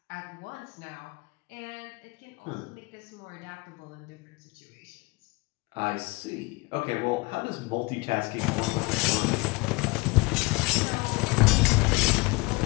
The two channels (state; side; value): quieter; right; 25.5 dB